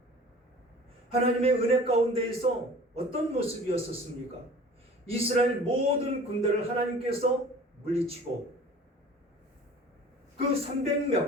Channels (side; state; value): both; normal; correlation 0.45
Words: 하나님의 은혜 가운데에서 어떤 모습이었었습니까? 이스라엘 모든 군대를 하나님께서 물리치고 그